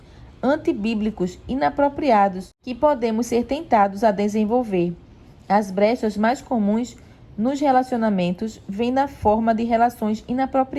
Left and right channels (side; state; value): both; identical; correlation 1.00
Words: antibíblicos inapropriados que podemos ser tentados a desenvolver. As brechas mais comuns nos relacionamentos vêm na forma de relações